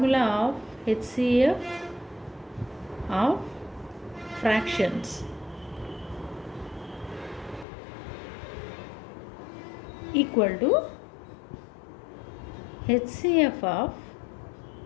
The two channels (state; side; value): drops out; right; at 7.7 s